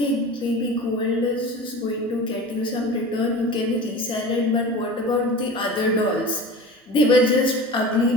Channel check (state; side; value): normal; both; correlation 0.35